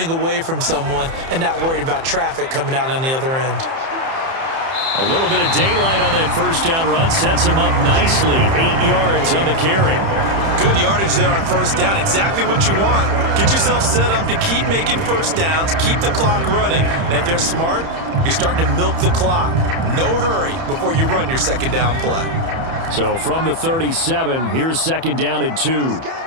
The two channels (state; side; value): late; left; 30 ms